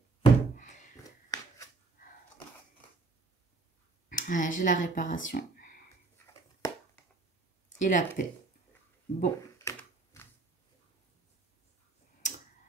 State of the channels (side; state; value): left; quieter; 3.7 dB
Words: Ouais, j'ai la réparation. Et la paix. Bon.